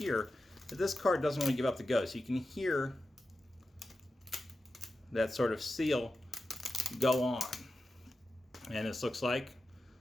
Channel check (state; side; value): normal; both; correlation 0.91